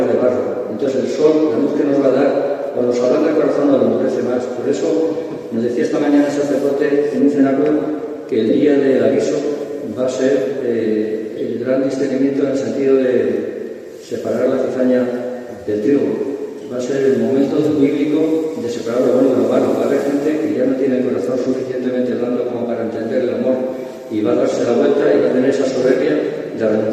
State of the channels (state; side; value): identical; both; correlation 1.00